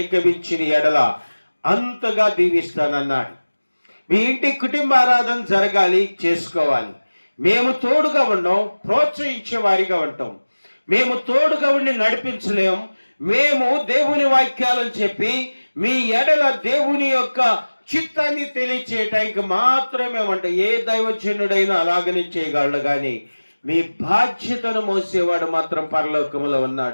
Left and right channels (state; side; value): inverted; both; correlation -1.00